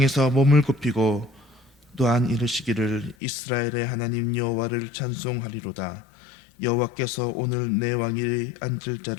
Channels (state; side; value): drops out; right; at 3.2 s